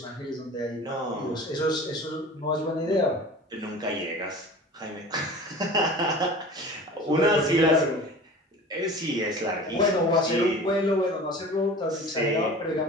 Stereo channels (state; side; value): normal; both; correlation 0.39